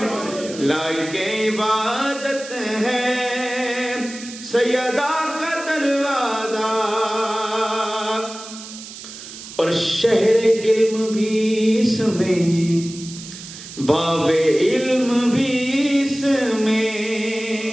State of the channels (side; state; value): right; noise; hiss, 13 dB below the sound